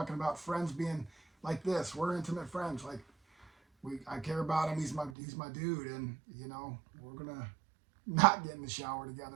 about friends being like this. We're intimate friends. Like I care about him. He's my dude, and you know we're gonna not get in the shower together,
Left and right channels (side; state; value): left; drops out; at 5.2 s